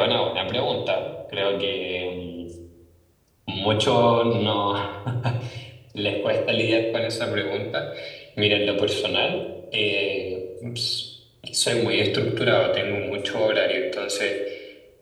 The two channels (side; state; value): both; identical; correlation 1.00